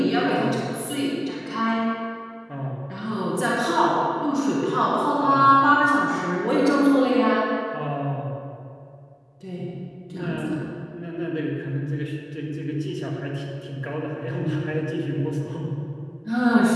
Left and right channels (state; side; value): identical; both; correlation 1.00